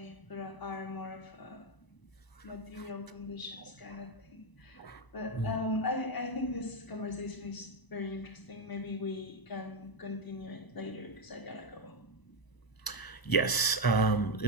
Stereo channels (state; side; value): late; right; 1.0 ms